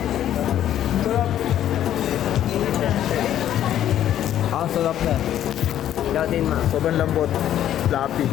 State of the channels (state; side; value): quieter; right; 11.3 dB